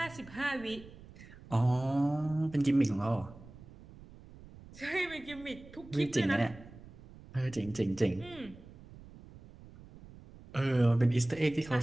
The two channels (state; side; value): noise; right; rumble, 19 dB below the sound